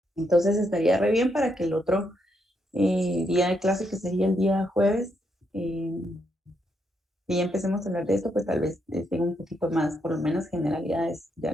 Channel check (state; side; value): normal; both; correlation 0.78